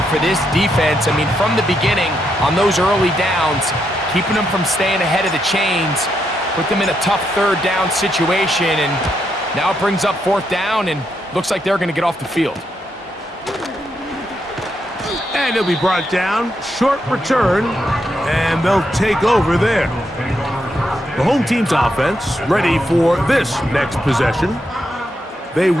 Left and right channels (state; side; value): normal; both; correlation 0.80